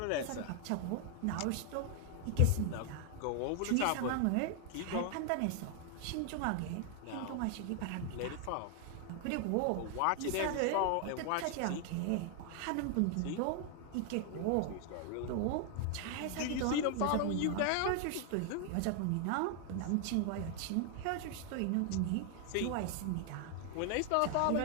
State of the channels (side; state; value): both; different; correlation 0.00